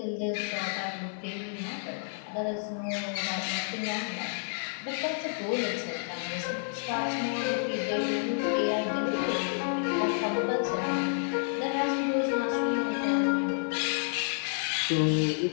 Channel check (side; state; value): right; silent; digital silence